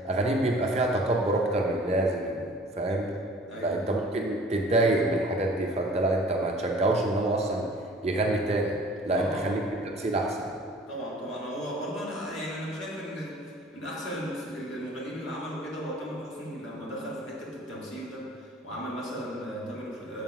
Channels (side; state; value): both; normal; correlation 0.49